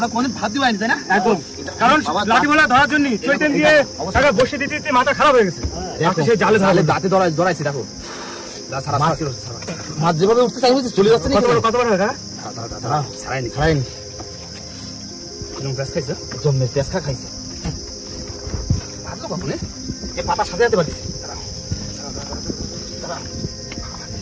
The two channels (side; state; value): both; identical; correlation 1.00